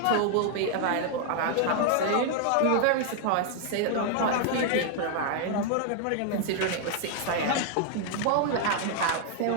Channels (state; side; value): different; both; correlation 0.00